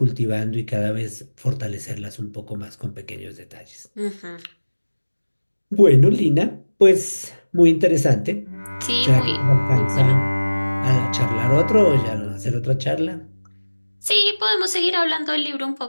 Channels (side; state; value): both; inverted; correlation -1.00